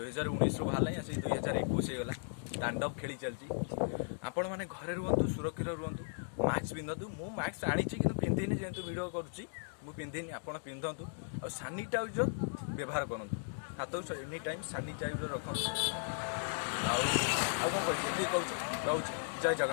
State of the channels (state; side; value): silent; right; digital silence